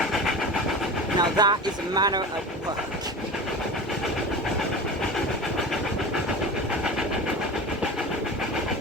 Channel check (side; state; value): both; normal; correlation 0.32